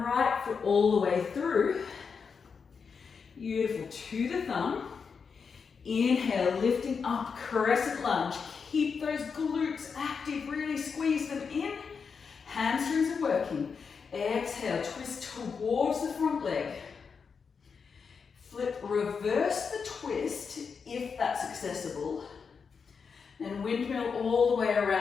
foot all the way through. Beautiful. To the thumb. Inhale, lifting up, crescent lunge. Keep those glutes active, really squeeze them in. Hamstrings are working. Exhale, twist towards the front leg. Flip, reverse the twist if that's accessible. Then windmill all the way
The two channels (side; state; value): right; quieter; 5.7 dB